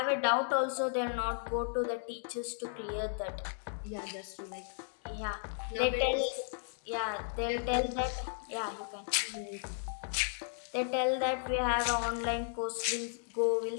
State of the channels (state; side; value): silent; right; digital silence